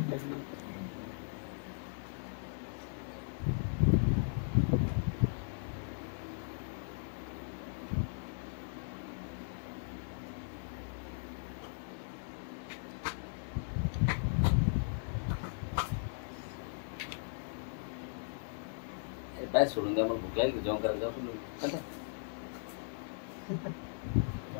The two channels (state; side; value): silent; right; digital silence